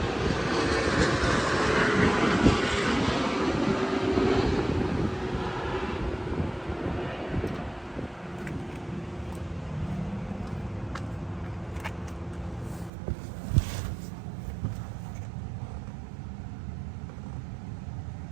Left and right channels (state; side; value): drops out; left; at 12.9 s